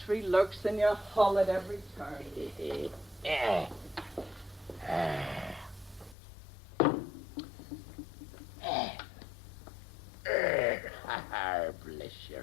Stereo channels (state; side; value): drops out; right; at 6.2 s